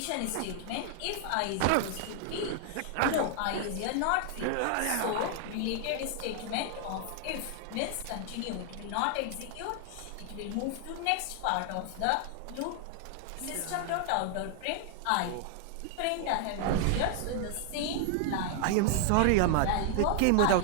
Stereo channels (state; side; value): different; both; correlation 0.00